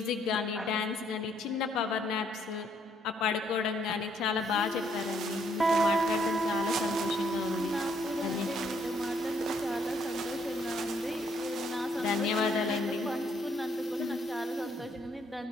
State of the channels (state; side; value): normal; both; correlation 0.69